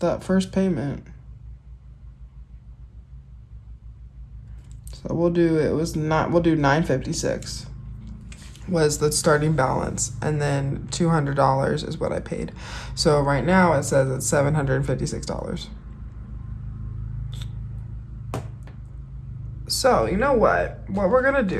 first payment. So we'll do $956 was the starting balance, and then $200 is what I paid. So right now it says it's $756. So you know what we're gonna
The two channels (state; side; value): identical; both; correlation 1.00